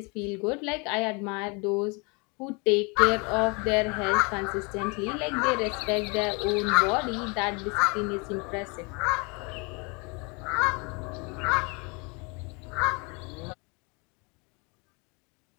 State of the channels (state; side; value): quieter; right; 30.9 dB